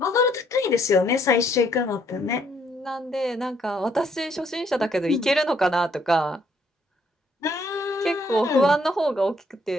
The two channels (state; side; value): normal; both; correlation 0.68